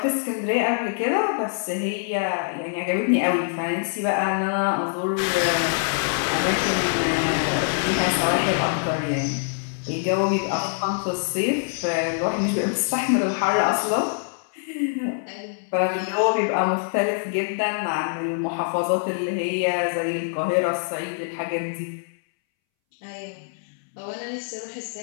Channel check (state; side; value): silent; right; 62 dB below the other